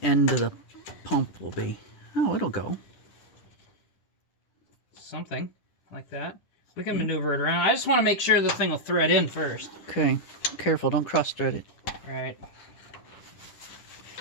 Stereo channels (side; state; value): right; late; 10 ms